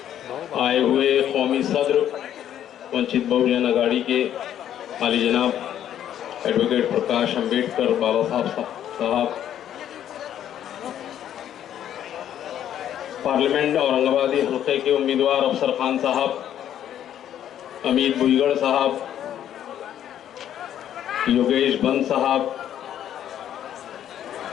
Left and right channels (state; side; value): quieter; right; 10.6 dB